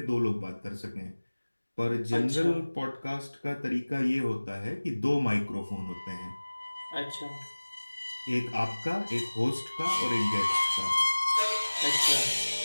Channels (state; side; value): inverted; both; correlation -1.00